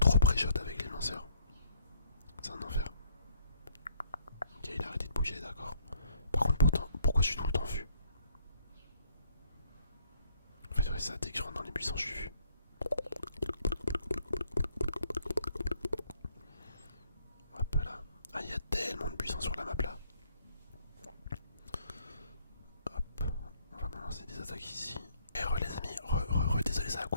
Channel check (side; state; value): both; inverted; correlation -0.66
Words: pré-shot avec les lanceurs. C'est un enfer. Ok, il a arrêté de bouger, d'accord. Par contre, pourquoi je suis tout le temps vu? En fait, ouais, ça, dès que je rentre dans les buissons, je suis vu.